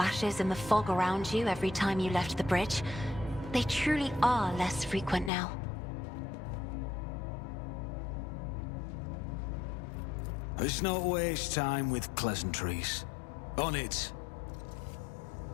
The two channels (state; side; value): drops out; right; at 5.3 s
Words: in the fog around you every time you left the bridge. They truly are less frequent now. Let's not waste time with pleasantries. On it.